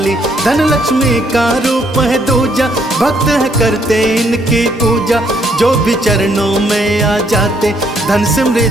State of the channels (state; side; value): normal; both; correlation 0.70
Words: धन लक्ष्मी का रूप है दूजा, भक्त है करते इनकी पूजा। जो भी चरणों में आ जाते, धन